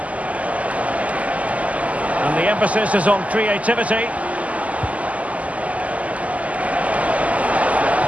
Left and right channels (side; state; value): left; late; 0.070 ms